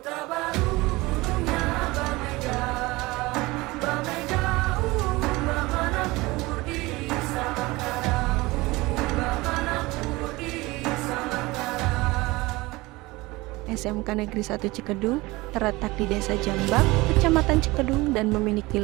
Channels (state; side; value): quieter; left; 21.5 dB